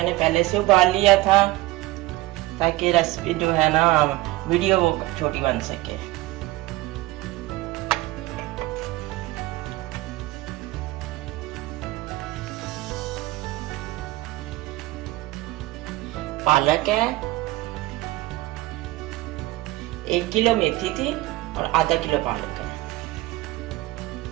पहले से उबाल लिया था ताकि रेसिपी जो है ना वीडियो वो छोटी बन सके। पालक है, 1 किलो मेथी थी और आधा किलो पालक है।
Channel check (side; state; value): left; quieter; 18.7 dB